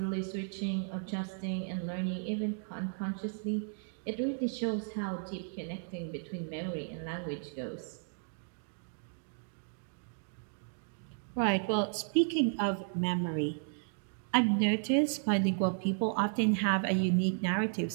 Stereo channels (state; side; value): silent; left; digital silence